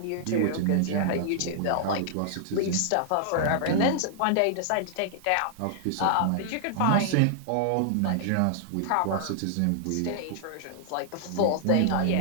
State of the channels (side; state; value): both; different; correlation -0.01